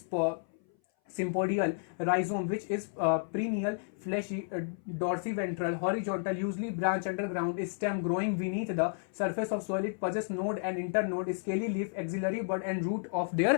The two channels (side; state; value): right; silent; 56 dB below the other